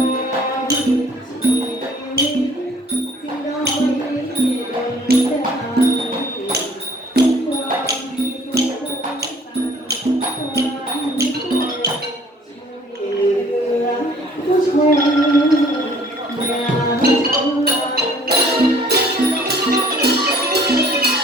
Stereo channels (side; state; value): both; normal; correlation 0.55